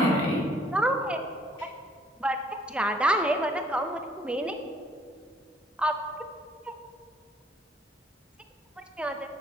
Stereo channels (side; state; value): both; normal; correlation 0.62